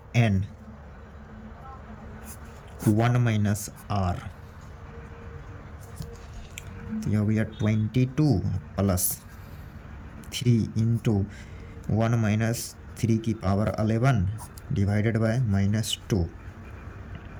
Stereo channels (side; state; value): both; identical; correlation 1.00